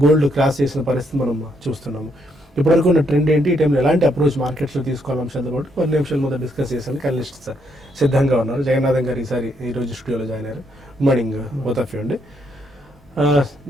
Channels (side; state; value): both; normal; correlation 0.75